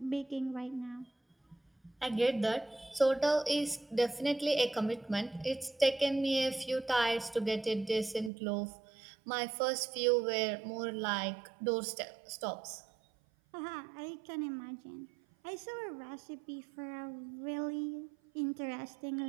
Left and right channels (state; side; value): drops out; left; at 8.3 s